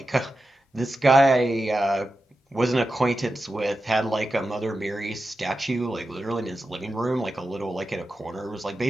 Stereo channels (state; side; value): normal; both; correlation 0.91